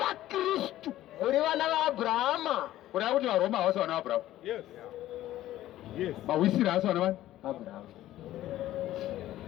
muri vana vaAbhurahama. Kuda kuti vaRoma havasi vana vaAbhurahama. Yes. Yes. Mawisiri havasi vana vani Abrahama.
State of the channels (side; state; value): right; quieter; 14.2 dB